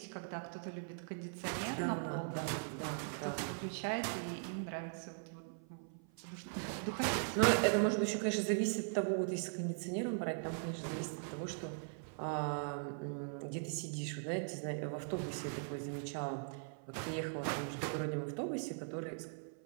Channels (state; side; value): silent; left; 51 dB below the other